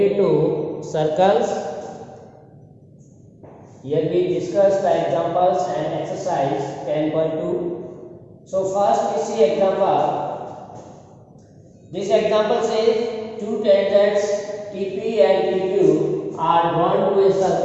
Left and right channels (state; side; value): identical; both; correlation 1.00